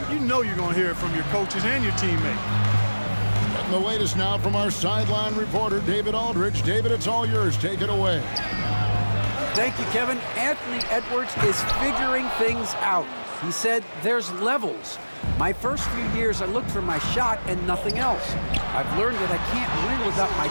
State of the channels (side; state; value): both; inverted; correlation -1.00